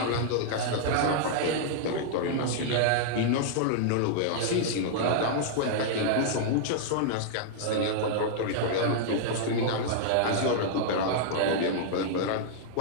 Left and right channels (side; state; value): both; different; correlation -0.01